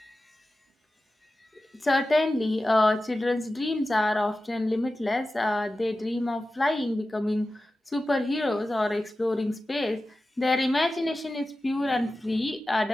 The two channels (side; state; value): both; normal; correlation 0.94